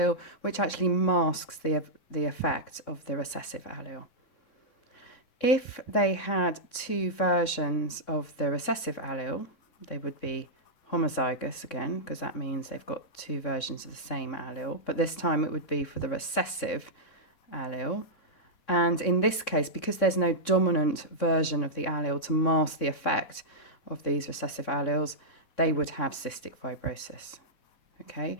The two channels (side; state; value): right; late; 3.6 ms